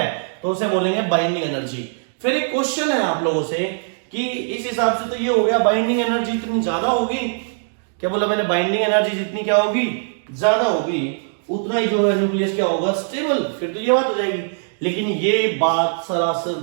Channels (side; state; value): left; silent; digital silence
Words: तो उसे बोलेंगे बाइंडिंग एनर्जी। फिर एक क्वेश्चन है आप लोगों से कि इस हिसाब से तो ये हो गया बाइंडिंग एनर्जी इतनी ज्यादा होगी, क्या बोला मैंने, बाइंडिंग एनर्जी जितनी क्या होगी, ज्यादा होगी, उतना ही जो है न्यूक्लियस क्या होगा, स्टेबल। फिर तो ये बात हो जाएगी, लेकिन ये बात सरासर